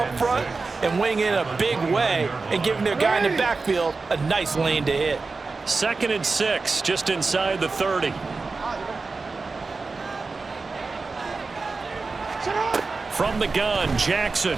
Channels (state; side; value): quieter; left; 4.0 dB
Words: front and winning in a big way and giving their guy in the backfield a nice lane to hit. 2nd and 6, just inside the 30. From the gun, Jackson.